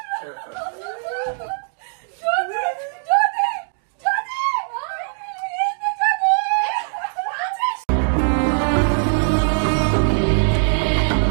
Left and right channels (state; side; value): silent; left; digital silence